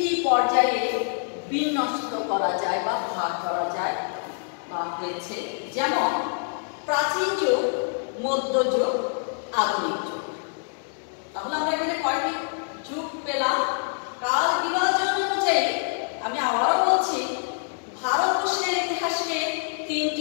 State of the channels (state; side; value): silent; right; 57 dB below the other